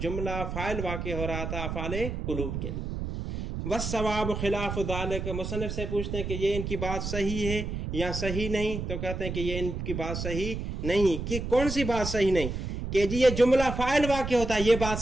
جملہ فاعل واقع ہو رہا تھا افعال قلوب کے لیے۔ والصواب خلاف ذالک، مصنف سے پوچھتے ہیں کہ یہ ان کی بات صحیح ہے یا صحیح نہیں، تو کہتے ہیں کہ یہ ان کی بات صحیح نہیں۔ کہ کون سی بات صحیح نہیں؟ کہ جی یہ جملہ فاعل واقع ہوتا ہے، یہ بات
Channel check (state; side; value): noise; right; rumble, 4 dB below the sound